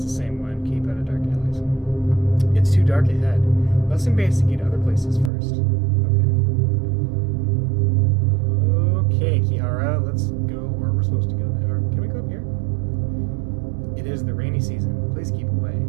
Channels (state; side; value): drops out; left; at 5.3 s